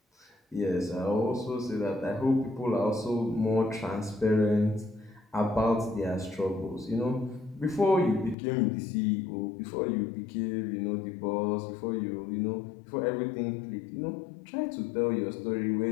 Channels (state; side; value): drops out; right; at 8.3 s